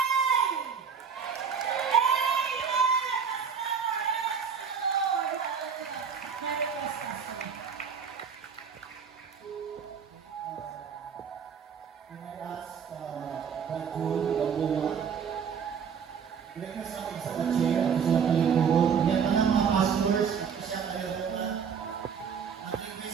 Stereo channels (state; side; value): quieter; left; 6.8 dB